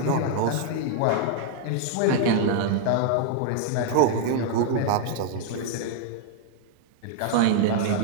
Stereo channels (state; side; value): different; both; correlation -0.01